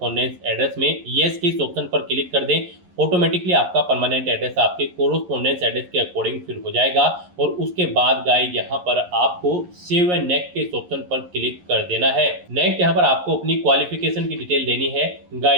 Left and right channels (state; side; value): late; left; 11 ms